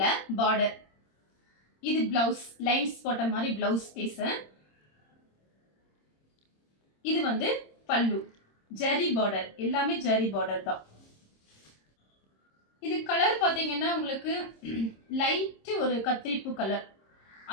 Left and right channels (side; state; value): right; late; 26 ms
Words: பார்டர். இது பிளவுஸ் லைன்ஸ் போட்ட மாதிரி பிளவுஸ் பீஸ். இது வந்து பல்லு ஜரி பார்டர். எல்லாமே ஜரி பார்டர் தான். இது கலர் பாத்தீங்கன்னா உங்களுக்கு லைட் ஒரு கத்திரிப்பூ கலர்.